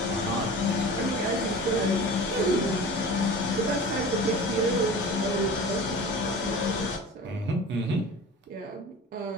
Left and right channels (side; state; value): both; normal; correlation 0.37